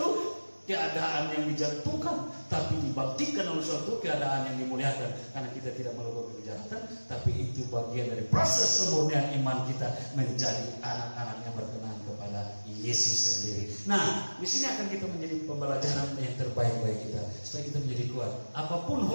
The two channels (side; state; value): both; inverted; correlation -1.00